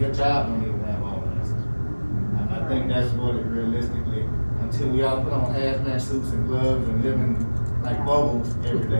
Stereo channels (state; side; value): inverted; both; correlation -1.00